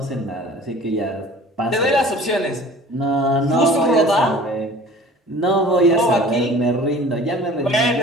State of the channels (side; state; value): both; normal; correlation 0.46